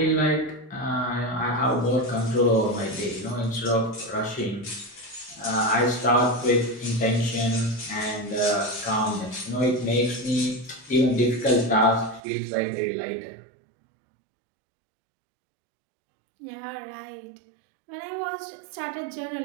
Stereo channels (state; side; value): drops out; left; at 12.2 s